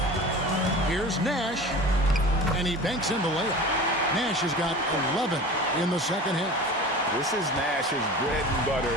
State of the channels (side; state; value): both; normal; correlation 0.36